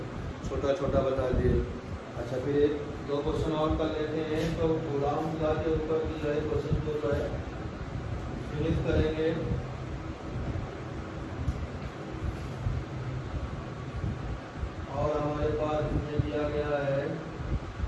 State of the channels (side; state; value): both; identical; correlation 1.00